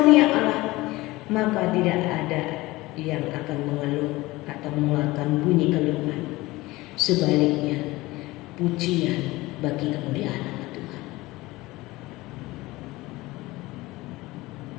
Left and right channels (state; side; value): quieter; right; 19.9 dB